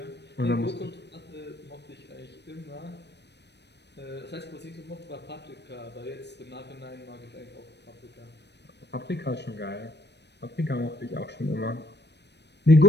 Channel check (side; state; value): right; late; 0.50 ms